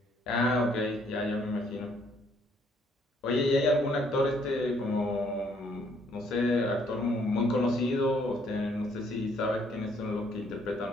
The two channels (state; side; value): normal; both; correlation 0.66